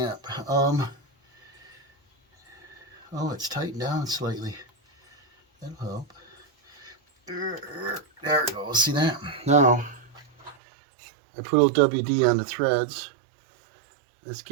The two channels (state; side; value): drops out; left; at 10.6 s